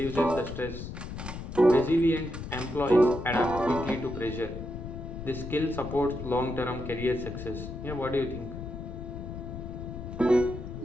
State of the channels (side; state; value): left; noise; rumble, 8 dB below the sound